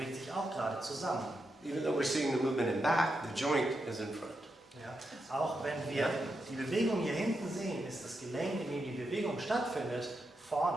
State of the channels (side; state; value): both; normal; correlation 0.85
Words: sich auch gerade zusammen. Even though we're seeing the movement in back, the joint is in front. Ja. Auch wenn wir die Bewegung hier hinten sehen, ist das Gelenk, in dem die Bewegung stattfindet,